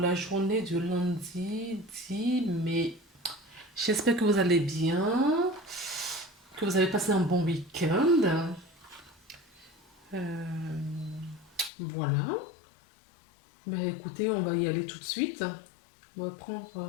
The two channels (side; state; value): right; drops out; at 11.7 s